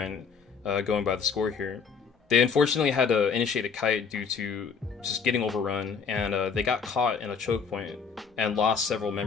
going by the score here. They unfortunately had to initiate a kite due to just getting overrun, and they got caught in a choke point and lost several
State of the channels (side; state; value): right; quieter; 6.0 dB